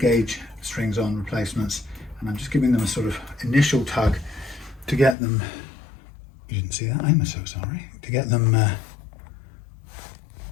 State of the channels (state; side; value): drops out; right; at 5.2 s